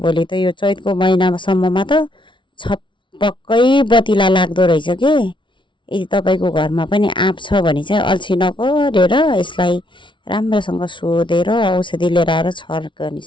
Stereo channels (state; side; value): late; right; 0.24 ms